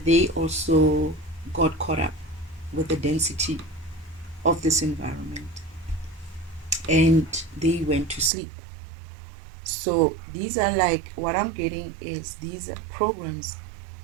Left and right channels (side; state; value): left; drops out; at 8.3 s